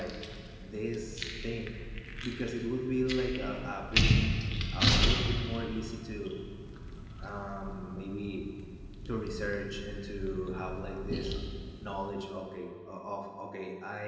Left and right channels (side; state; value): both; identical; correlation 1.00